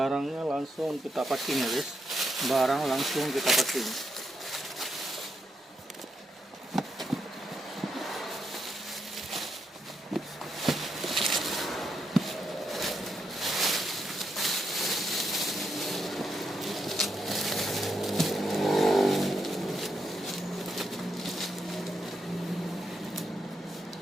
langsung kita packing ya, guys. Barang langsung kita packing.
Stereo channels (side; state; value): both; normal; correlation 0.81